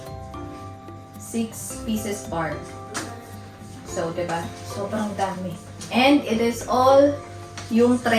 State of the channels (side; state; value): both; identical; correlation 1.00